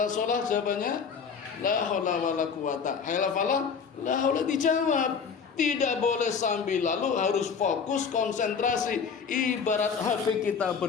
sholat, jawabannya la haula wala quwata. Hayalah falah, la haula, dijawab. Tidak boleh sambil lalu, harus fokus, konsentrasi. Ibarat HP kita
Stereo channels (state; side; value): quieter; right; 6.1 dB